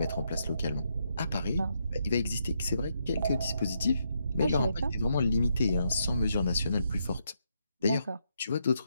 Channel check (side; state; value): both; inverted; correlation -0.78